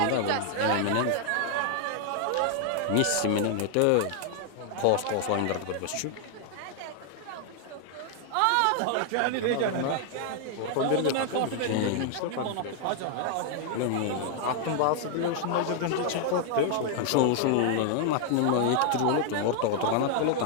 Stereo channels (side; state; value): both; different; correlation 0.00